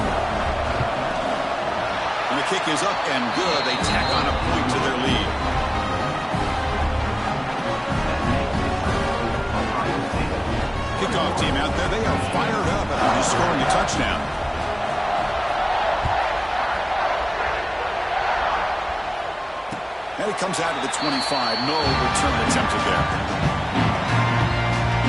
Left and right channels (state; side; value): identical; both; correlation 1.00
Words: And the kick is up and good. They tack on a point to their lead. Kickoff team out there. They are fired up after just scoring a touchdown. And it comes out of the 25. No return attempted there.